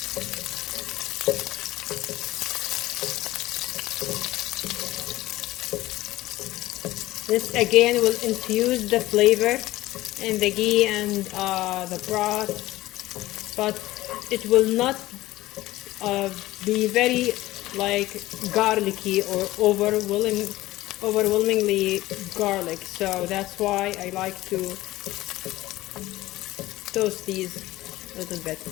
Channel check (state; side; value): quieter; right; 17.0 dB